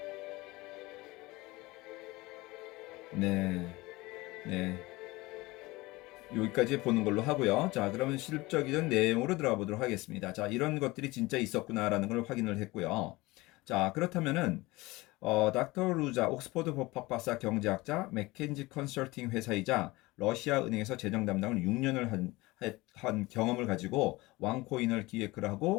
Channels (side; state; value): right; quieter; 21.3 dB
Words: 네. 네. 여기까지 보는 걸로 하고요. 자, 그러면 실질적인 내용으로 들어가 보도록 하겠습니다. 자, 이런 것들이 진짜 있었구나라는 걸 확인을 했고요. 자, 그렇다면은 닥터 루자, 옥스퍼드 법학박사 경제학자, 맥켄지 컨설팅 회사이자 러시아 은행에서 재정 담당을 6년을 한 경험을 가지고 왕코인을 기획을